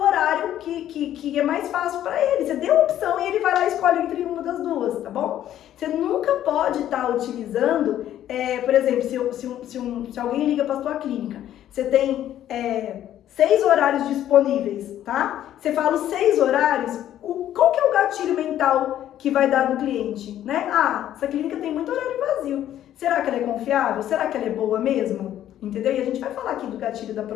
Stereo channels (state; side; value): quieter; right; 11.7 dB